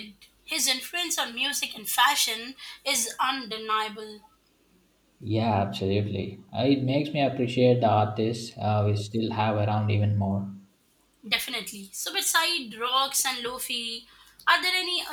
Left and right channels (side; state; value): both; identical; correlation 1.00